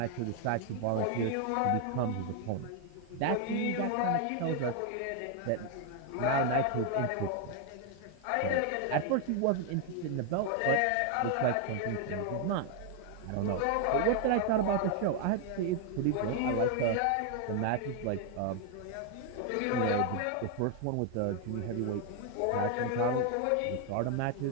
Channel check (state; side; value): different; both; correlation 0.00